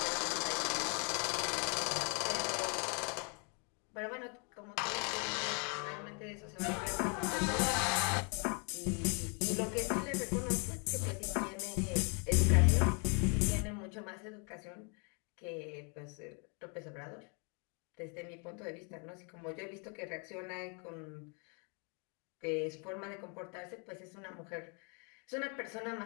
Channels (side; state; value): right; quieter; 36.8 dB